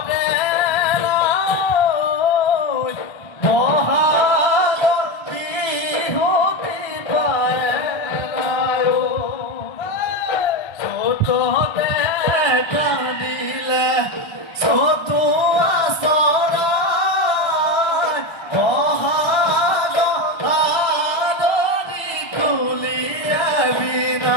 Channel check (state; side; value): late; right; 1.3 ms